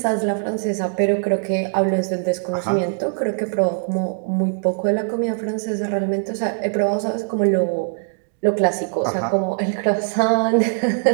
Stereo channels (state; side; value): silent; left; 59 dB below the other